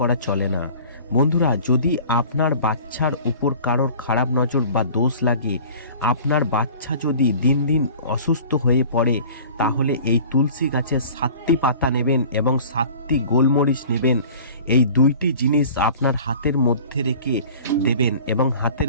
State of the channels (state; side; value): inverted; both; correlation -0.44